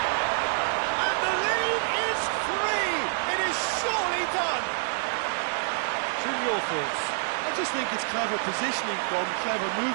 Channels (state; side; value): silent; left; digital silence